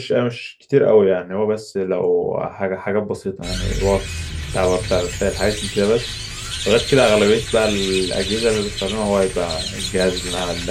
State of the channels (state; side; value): identical; both; correlation 1.00